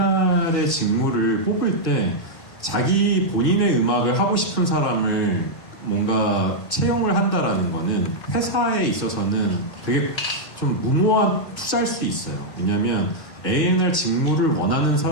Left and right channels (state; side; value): late; right; 2.0 ms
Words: 직무를 뽑을 때 자기 본인의 음악을 하고 싶은 사람을 뭔가 채용을 한다라는 거는 회사에 있어서는 되게 좀 무모한 투자일 수 있어요. 왜냐하면 A&R 직무를 원하는